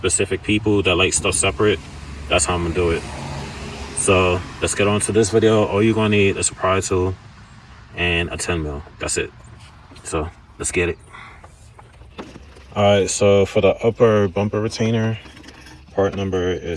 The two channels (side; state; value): both; identical; correlation 1.00